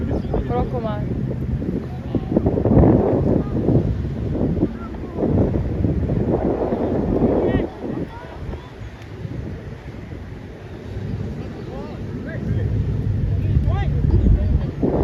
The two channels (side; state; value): both; identical; correlation 1.00